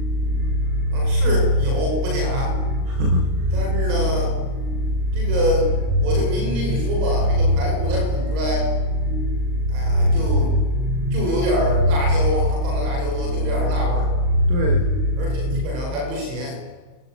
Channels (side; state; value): left; late; 39 ms